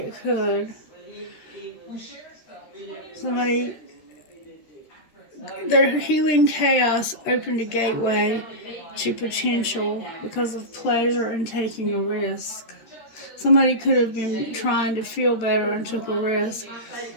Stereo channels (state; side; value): late; right; 13 ms